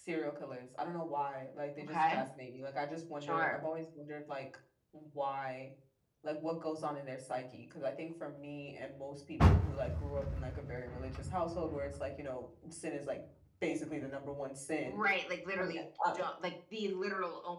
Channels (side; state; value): both; identical; correlation 1.00